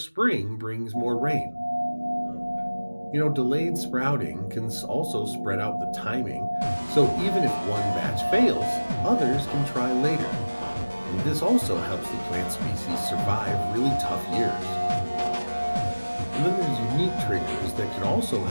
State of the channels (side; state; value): both; inverted; correlation -1.00